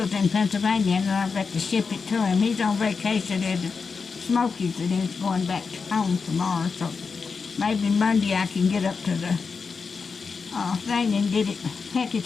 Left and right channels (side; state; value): right; quieter; 5.1 dB